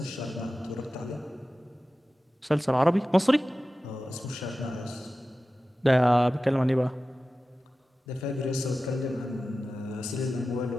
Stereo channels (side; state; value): both; normal; correlation 0.94